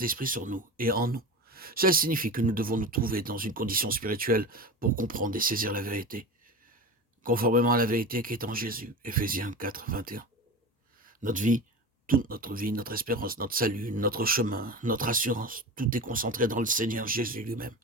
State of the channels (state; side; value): normal; both; correlation 0.28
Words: sur nous et en nous. Cela signifie que nous devons nous trouver dans une condition spirituelle pour comprendre et saisir la vérité, conformément à la vérité qui est en Jésus. Éphésiens 4, 21. Notre vie, toute notre vie, notre espérance, notre salut, notre chemin, notre assurance, tout est concentré dans le Seigneur Jésus lui-même.